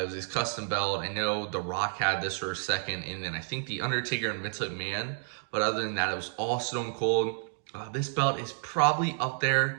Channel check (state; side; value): silent; left; digital silence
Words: was his custom belt. I know The Rock had this for a second, and then I think The Undertaker and Vince McMahon. But other than that, it was all Stone Cold. This belt is probably up